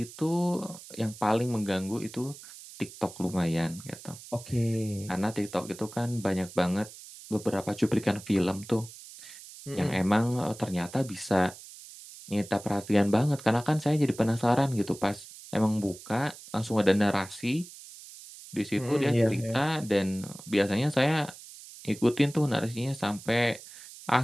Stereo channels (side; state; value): right; noise; hiss, 16 dB below the sound